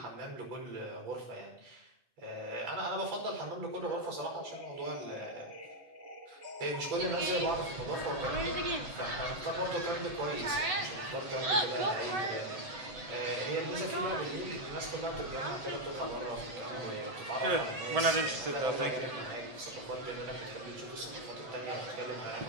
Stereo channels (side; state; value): left; late; 7.9 ms